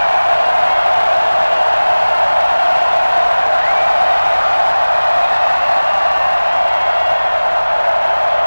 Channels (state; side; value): inverted; both; correlation -1.00